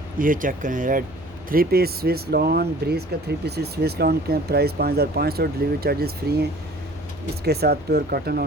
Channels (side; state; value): right; noise; hum, 21 dB below the sound